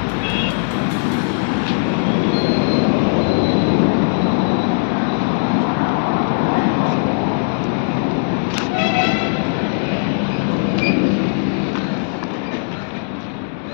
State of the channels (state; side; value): silent; right; digital silence